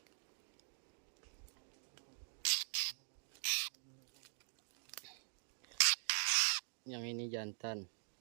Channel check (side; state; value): left; silent; digital silence